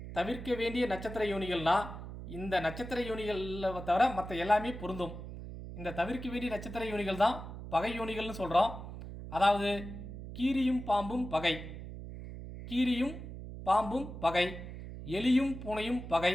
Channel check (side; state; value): right; noise; hum, 10 dB below the sound